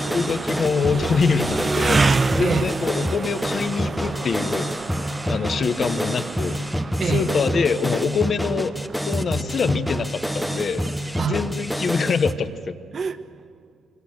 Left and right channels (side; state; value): both; normal; correlation 0.85